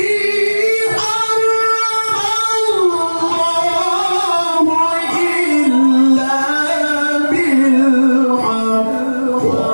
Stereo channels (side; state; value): both; inverted; correlation -1.00